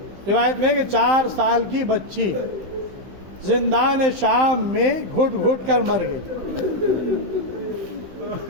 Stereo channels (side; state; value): left; late; 15 ms